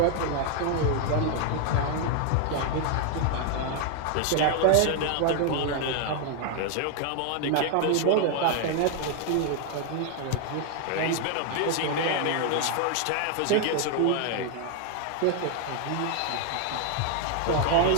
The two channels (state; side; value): different; both; correlation 0.00